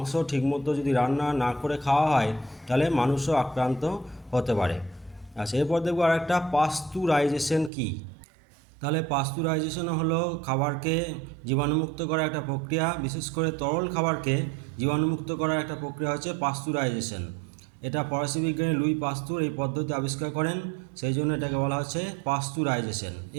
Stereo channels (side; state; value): left; drops out; at 7.7 s